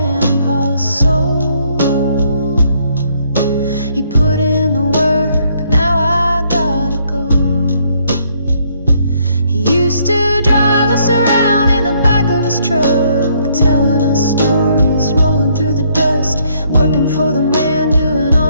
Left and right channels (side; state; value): both; inverted; correlation -0.69